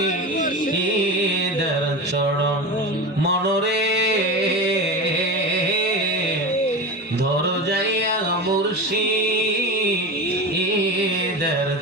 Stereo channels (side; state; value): both; normal; correlation 0.25